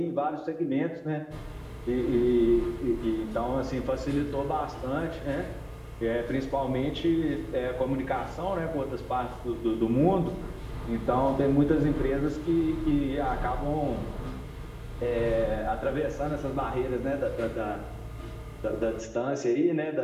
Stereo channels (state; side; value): identical; both; correlation 1.00